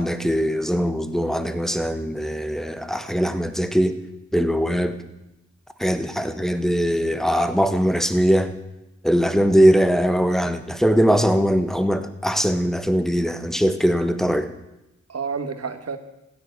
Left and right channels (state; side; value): normal; both; correlation 0.93